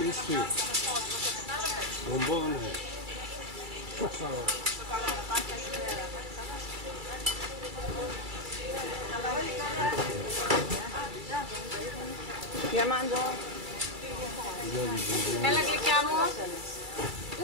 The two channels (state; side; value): late; left; 2.3 ms